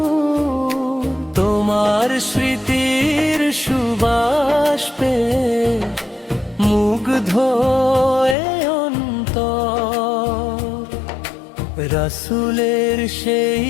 তোমার স্মৃতির সুবাস পেয়ে মুগ্ধ এ অন্তর। রাসূলের সেই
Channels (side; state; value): right; drops out; at 8.3 s